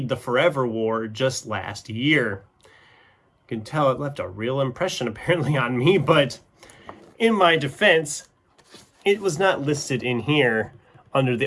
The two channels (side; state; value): both; identical; correlation 1.00